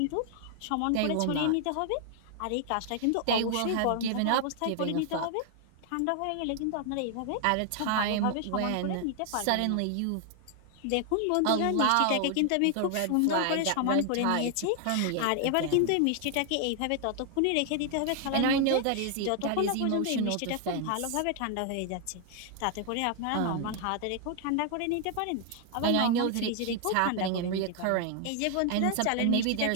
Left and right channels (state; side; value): different; both; correlation 0.00